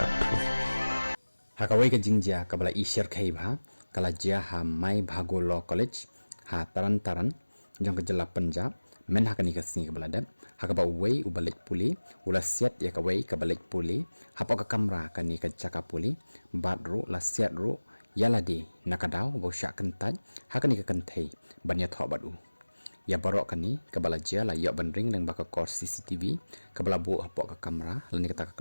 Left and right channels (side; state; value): both; inverted; correlation -1.00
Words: Hakawai ka jingja kabala ishar khaibha kala jia ha mai bhago law college ha taran jong ka jala Punjab men hakani ka singi kabala dat hakaba wei ubalik puli ula siat ya ka wei kabalik puli hapo ka kamra kani ka chaka puli badru la siat ru yaladi nakadaw bo syak kentaj hakani ka kentai banya tho badu ya barok kani kabala jia la ya bandring leng baka kor CCTV kabala bu hapo ka kamra lani ka